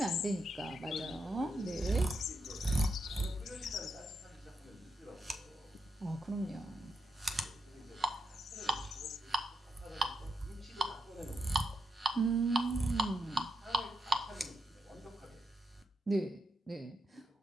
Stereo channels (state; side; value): normal; both; correlation 0.83